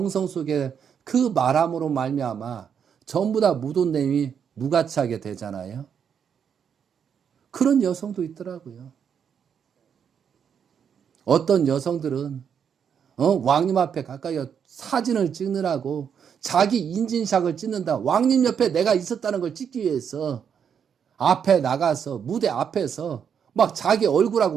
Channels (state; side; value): quieter; left; 7.6 dB